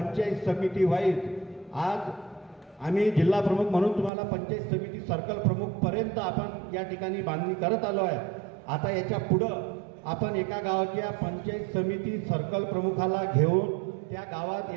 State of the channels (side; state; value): left; drops out; at 4.1 s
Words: समिती वाईज आज आम्ही जिल्हा प्रमुख म्हणून तुम्हाला पंचायत समिती सर्कल प्रमुख पर्यंत आपण या ठिकाणी बांधणी करत आलो आहे। आता याच्या पुढं आपण एका गावाच्या पंचायत समिती सर्कल प्रमुखाला घेऊन त्या गावात